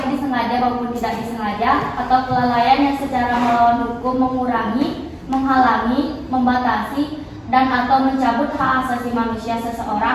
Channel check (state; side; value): identical; both; correlation 1.00